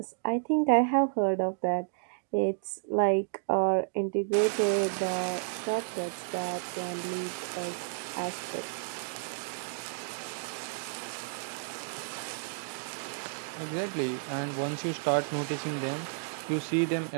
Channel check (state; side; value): silent; left; digital silence